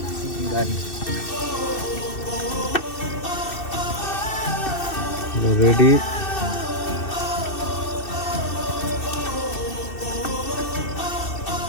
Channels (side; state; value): right; late; 2.6 ms